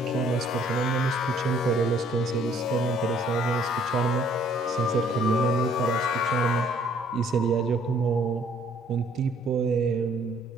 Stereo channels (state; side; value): normal; both; correlation 0.61